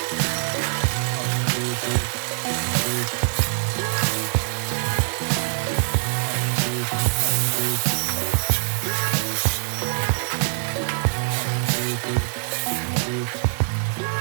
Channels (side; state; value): left; silent; digital silence